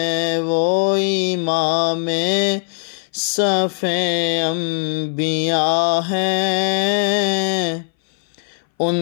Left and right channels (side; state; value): right; silent; 61 dB below the other